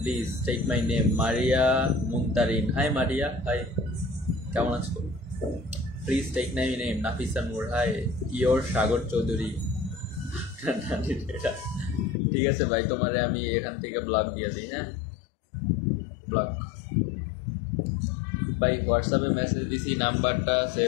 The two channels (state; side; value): drops out; right; at 12.2 s